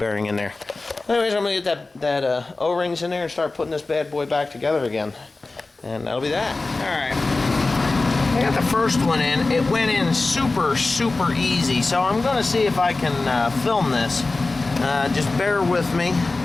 in there. Anyways, I'm going to get that O-rings in there and start putting this bad boy back together again. And that'll be that. Alright. I got the first one in. It went in super, super easy. So I'm going to see if I can film this. Just bear with me.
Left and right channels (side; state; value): right; quieter; 3.4 dB